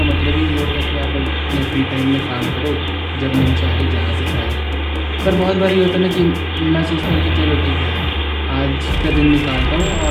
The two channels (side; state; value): both; identical; correlation 1.00